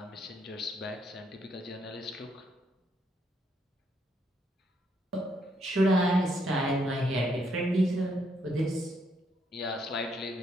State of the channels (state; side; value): normal; both; correlation 0.74